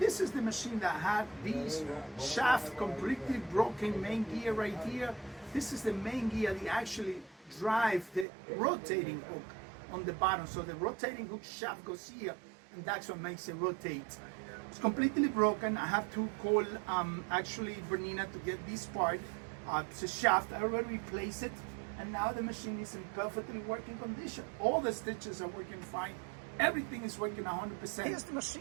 is the machine that had these shaft completely broken main gear right here. This is the main gear that actually drive the rotating hook on the bottom. So the rotating hook shaft goes here, and that's what makes it rotate. It's completely broken. I have to call actually Bernette to get this part. It's a shaft. I already replaced it. And now the machine is in perfectly working condition. All the stitches are working fine. Everything is working 100%. Here's the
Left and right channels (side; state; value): left; drops out; at 8.2 s